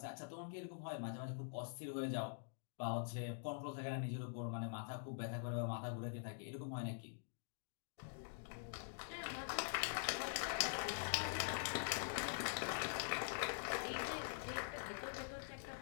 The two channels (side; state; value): right; silent; digital silence